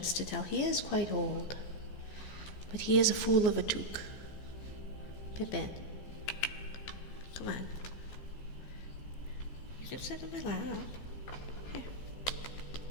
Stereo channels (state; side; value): late; right; 15 ms